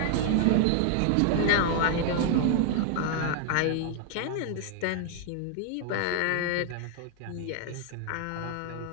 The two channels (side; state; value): both; different; correlation 0.00